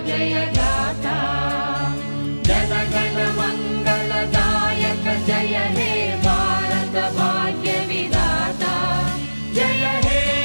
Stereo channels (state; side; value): inverted; both; correlation -1.00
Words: जय गाथा जन गण मंगलदायक जय हे भारत भाग्य विधाता जय हे